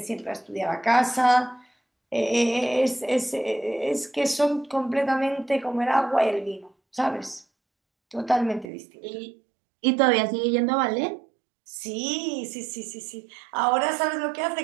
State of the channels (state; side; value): drops out; left; at 8.7 s